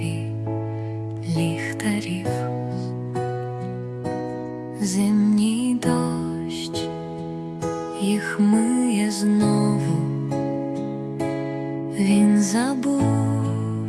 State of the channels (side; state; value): both; identical; correlation 1.00